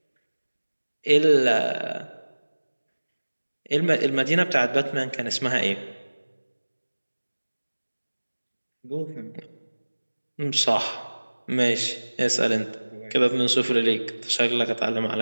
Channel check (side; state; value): both; inverted; correlation -1.00